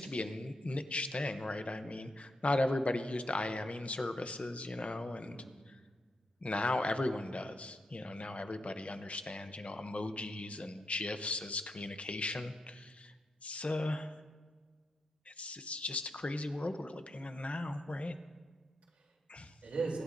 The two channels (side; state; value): both; normal; correlation 0.84